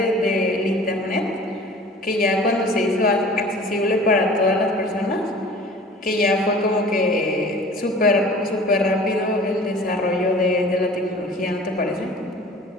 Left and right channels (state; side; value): normal; both; correlation 0.44